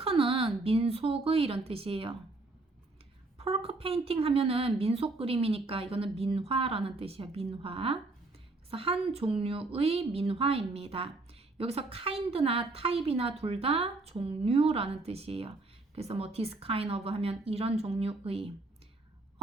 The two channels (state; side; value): quieter; left; 3.2 dB